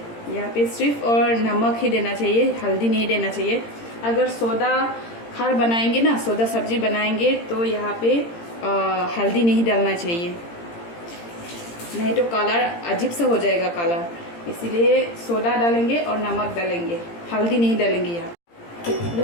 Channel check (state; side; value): late; right; 17 ms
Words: यहाँ पे सिर्फ और नमक ही देना चाहिए, हल्दी नहीं देना चाहिए। अगर सोडा खार बनाएंगे ना, सोडा सब्जी बनाएंगे तो यहाँ पे हल्दी नहीं डालना चाहिए, नहीं तो कलर अजीब सा हो जाएगा कलर। इसीलिए सोडा डालेंगे और नमक डालेंगे, हल्दी नहीं डालेंगे।